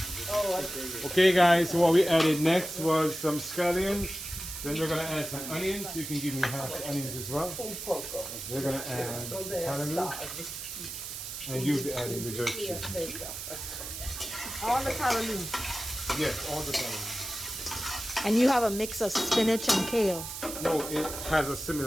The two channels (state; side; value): noise; right; hiss, 8 dB below the sound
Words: the. Okay, guys. So what we added next was some scallions. Then we're gonna add some onions. You can give me half the onions as well. We're gonna add kallaloo, and you'll be adding the jerky. All the kallaloo. Yes, all the kallaloo. And you have a mix of spinach and kale. No, it has a